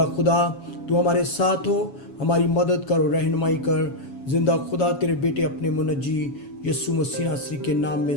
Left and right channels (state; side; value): late; right; 7.1 ms